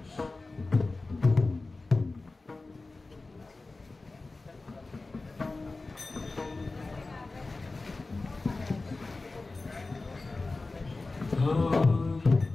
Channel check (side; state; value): right; quieter; 3.4 dB